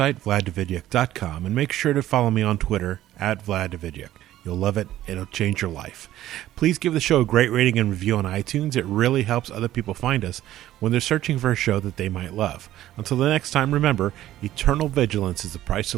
vladdavidyak.com, and make sure to follow me on Twitter at vladdavidyak. You'll love it. It'll change your life. Please give the show a great rating and review on iTunes. It really helps other people find us when they're searching for a show that they might love. Until the next time, remember, eternal vigilance is the price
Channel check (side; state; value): left; quieter; 13.6 dB